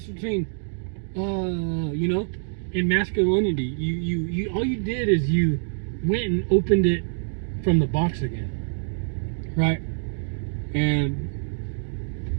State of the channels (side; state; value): left; silent; digital silence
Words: between, you know, and masculinity. You all you did is you went and opened it from the box again. Right? And